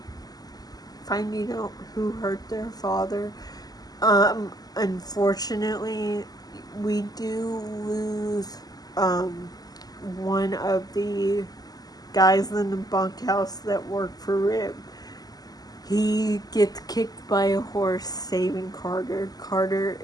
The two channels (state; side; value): late; right; 0.18 ms